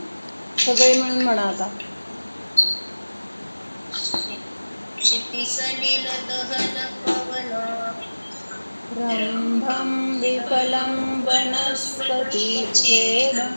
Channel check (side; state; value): both; inverted; correlation -1.00